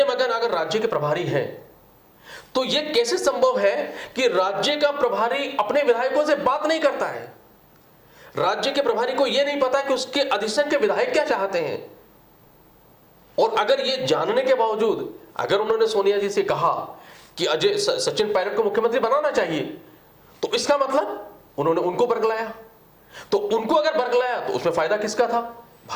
माकन अगर राज्य के प्रभारी हैं, तो यह कैसे संभव है कि राज्य का प्रभारी अपने विधायकों से बात नहीं करता है? राज्य के प्रभारी को यह नहीं पता कि उसके अधिष्ठान के विधायक क्या चाहते हैं। और अगर यह जानने के बावजूद अगर उन्होंने सोनिया जी से कहा कि अजय सचिन पायलट को मुख्यमंत्री बनाना चाहिए, तो इसका मतलब उन्होंने उनको बरगलाया। तो उनको अगर बरगलाया तो उसमें फायदा किसका था?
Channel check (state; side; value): identical; both; correlation 1.00